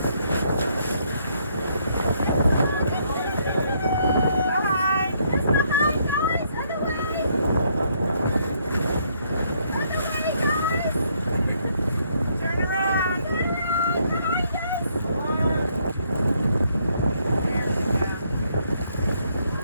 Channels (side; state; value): both; inverted; correlation -0.71